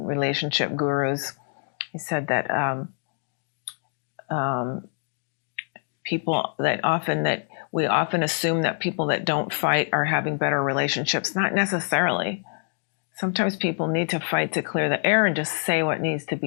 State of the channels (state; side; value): silent; right; digital silence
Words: gurus, he said that we often assume that people that don't fight are having better relationships. Not necessarily. Sometimes people need to fight to clear the air and just say what needs to